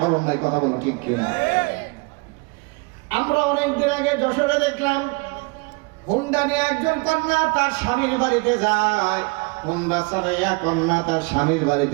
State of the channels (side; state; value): left; quieter; 29.6 dB